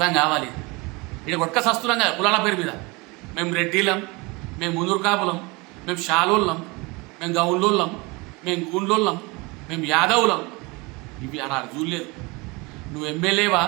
కావాలి. ఇక్కడ ఒక్క సస్తున్నాం కదా కులాల పేరు మీద. మేము రెడ్డిలం, మేము మునూరు కాపులం, మేము షాలోళ్ళం, మేము గౌన్లోళ్ళం, మేము గూండ్లోళ్ళం, మేము యాదవులం. ఇవి అలా చూడలేదు. నువ్వు ఎమ్మెల్యేవా,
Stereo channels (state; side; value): quieter; left; 25.9 dB